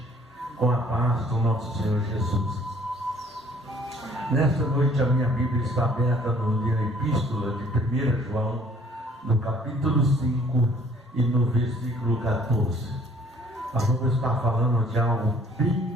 com a paz do nosso Senhor Jesus. Nesta noite a minha Bíblia está aberta na Epístola de 1 João, no capítulo 5 e no versículo 14. Nós vamos estar falando de algo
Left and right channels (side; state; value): both; normal; correlation 0.58